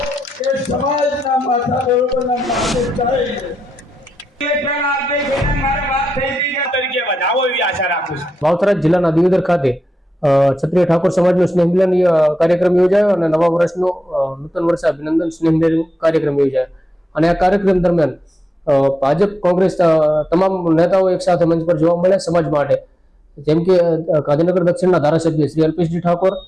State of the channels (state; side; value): normal; both; correlation 0.88